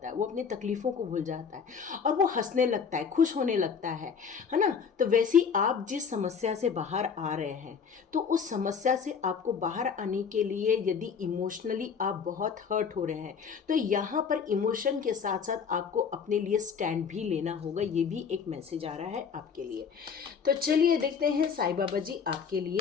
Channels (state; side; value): quieter; right; 6.4 dB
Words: है, वो अपनी तकलीफ़ों को भूल जाता है और वो हंसने लगता है, खुश होने लगता है ना। तो वैसे ही आप जिस समस्या से बाहर आ रहे हैं, तो उस समस्या से आपको बाहर आने के लिए यदि इमोशनली आप बहुत हर्ट हो रहे हैं, तो यहाँ पर इमोशन के साथ साथ आपको अपने लिए स्टैंड भी लेना होगा। ये भी एक मैसेज आ रहा है आपके लिए। तो चलिए देखते हैं साईं बाबा जी आपके